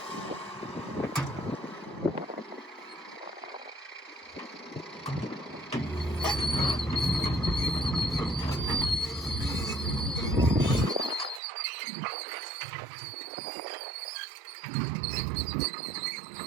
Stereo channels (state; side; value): drops out; left; at 11.4 s